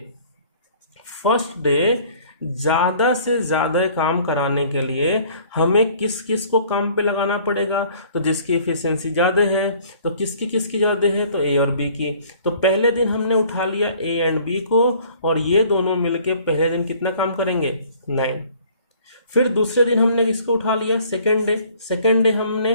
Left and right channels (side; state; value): both; inverted; correlation -0.55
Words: डे ज़्यादा से ज़्यादा काम कराने के लिए हमें किस किस को काम पे लगाना पड़ेगा, तो जिसकी एफिशिएंसी ज़्यादा है, तो किसकी किसकी ज़्यादा है, तो ए और बी की। तो पहले दिन हमने उठा लिया ए एंड बी को, और ये दोनों मिलके पहले दिन कितना काम करेंगे, 9। फिर दूसरे दिन हमने किसको उठा लिया, सेकेंड डे हमने,